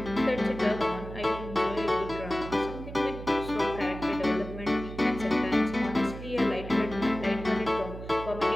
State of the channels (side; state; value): right; noise; hum, 11 dB below the sound